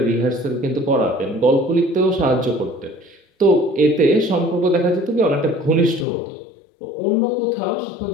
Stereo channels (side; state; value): right; drops out; at 6.1 s